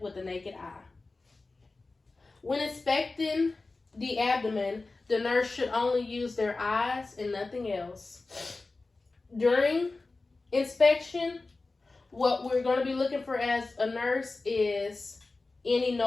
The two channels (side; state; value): right; quieter; 3.5 dB